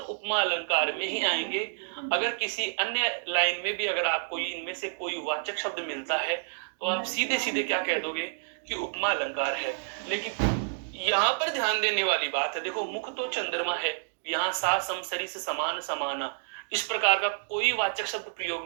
उपमा अलंकार में ही आएंगे। अगर किसी अन्य लाइन में भी अगर आपको इनमें से कोई वाचक शब्द मिलता है तो आप सीधे सीधे क्या कह दोगे? कि उपमा अलंकार है। लेकिन यहाँ पर ध्यान देने वाली बात है, देखो, मुख तो चंद्रमा है, यहाँ सा सम सरी से समान समाना, इस प्रकार का कोई वाचक शब्द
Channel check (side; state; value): left; silent; digital silence